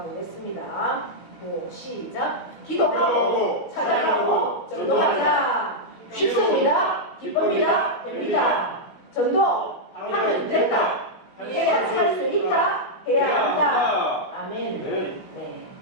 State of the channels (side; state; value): right; late; 16 ms